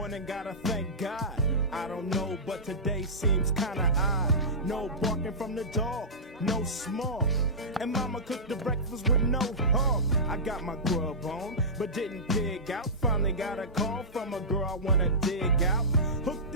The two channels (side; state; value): both; normal; correlation -0.17